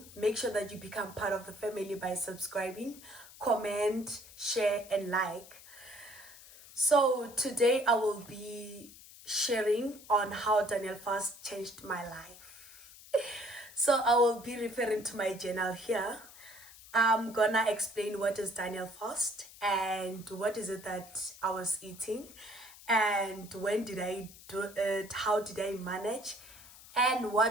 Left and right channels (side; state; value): left; noise; hiss, 19 dB below the sound